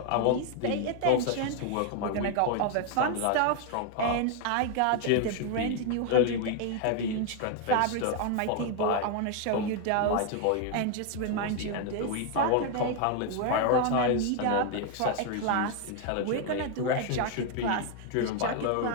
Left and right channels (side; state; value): both; different; correlation 0.01